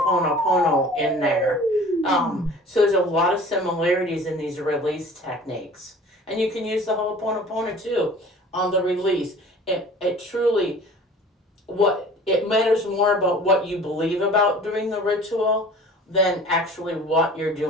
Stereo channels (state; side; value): normal; both; correlation 0.45